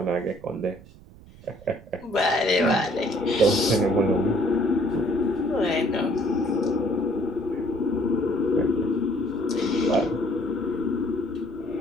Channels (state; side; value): noise; right; rumble, 21 dB below the sound